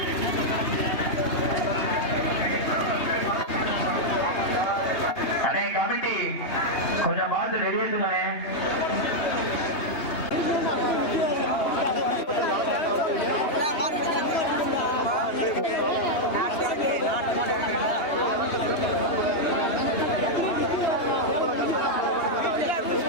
அண்ணே கமிட்டி கொஞ்சம் பார்த்து வெளியேற்றுவானே.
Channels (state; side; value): late; right; 3.1 ms